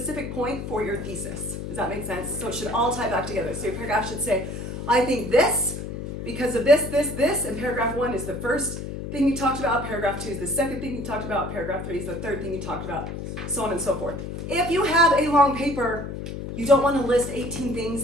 point for your thesis. Does that make sense? So it should all tie back together. So your paragraph should say, I think this, because of this, and paragraph 1 is the first thing you talked about, paragraph 2 is the second thing you talked about, paragraph 3 is the third thing you talked about, so on and so forth. If you have a long paper, you don't want to list 18 things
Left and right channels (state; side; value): noise; left; hum, 7 dB below the sound